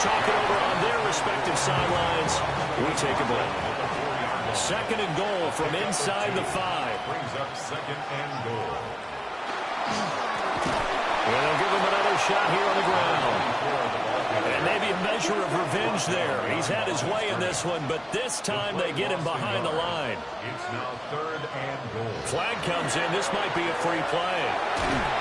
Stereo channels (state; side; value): identical; both; correlation 1.00